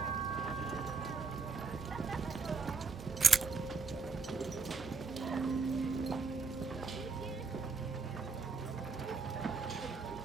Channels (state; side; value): quieter; left; 4.8 dB